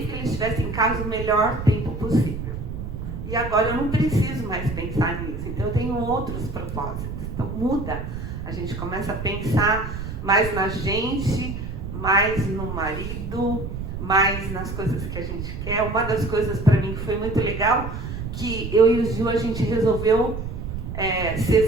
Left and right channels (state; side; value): noise; right; rumble, 6 dB below the sound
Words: que eles estivessem em casa, o melhor tempo possível. E agora eu não preciso mais pensar nisso. Então eu tenho outros propósitos. Então muda. A gente começa a pensar mais na gente, mais no marido, mais nas coisas que a gente quer. Uma das coisas para mim que foi muito legal, que eu e o Gil, a gente resolveu se